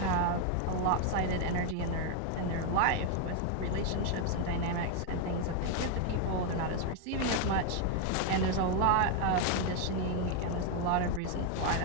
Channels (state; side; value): different; both; correlation 0.01